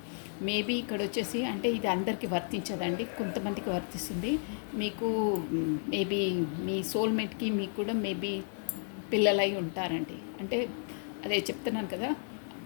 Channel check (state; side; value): silent; right; 56 dB below the other